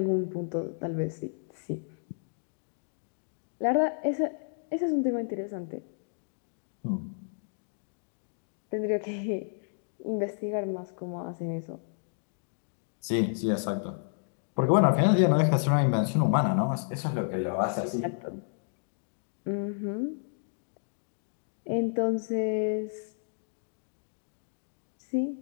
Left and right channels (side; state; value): right; silent; digital silence